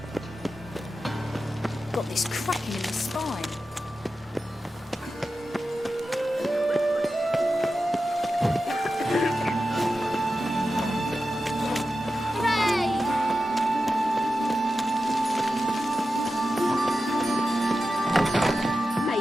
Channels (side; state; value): both; normal; correlation 0.92